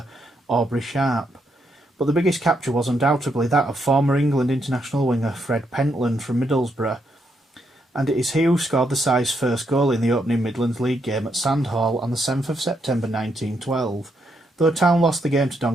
Aubrey Sharp. But the biggest capture was undoubtedly that of former England international winger Fred Pentland from Middlesbrough, and it is he who scored the side's first goal in the opening Midlands League game at Sandhall on the 7th of September 1912, though Town lost the game to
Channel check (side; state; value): both; normal; correlation 0.78